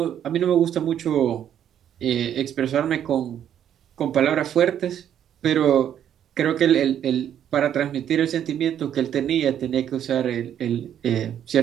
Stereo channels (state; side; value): quieter; left; 9.9 dB